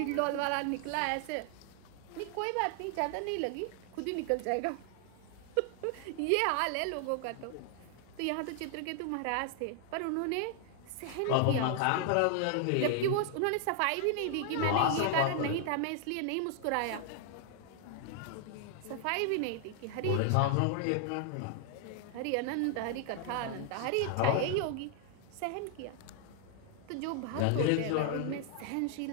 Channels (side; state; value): both; different; correlation 0.00